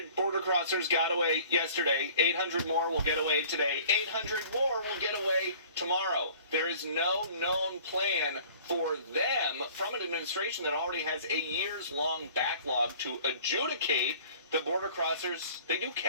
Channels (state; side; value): inverted; both; correlation -0.49